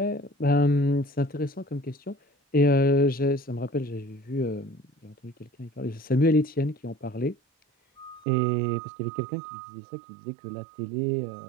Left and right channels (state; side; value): drops out; left; at 8.2 s